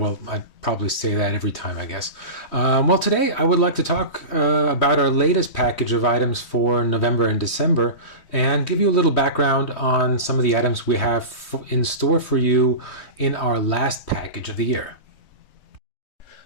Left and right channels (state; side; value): late; right; 3.2 ms